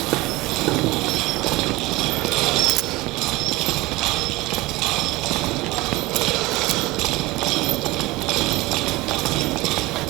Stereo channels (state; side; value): quieter; left; 20.8 dB